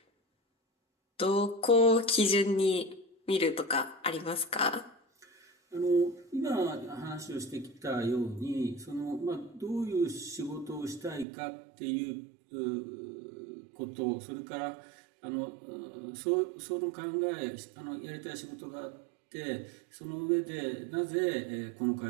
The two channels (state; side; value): drops out; left; at 11.2 s